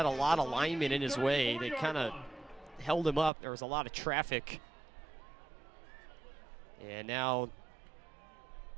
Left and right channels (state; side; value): drops out; left; at 3.3 s